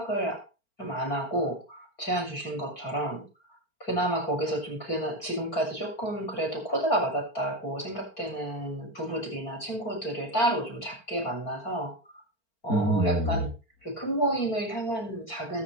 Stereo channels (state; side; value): late; right; 4.4 ms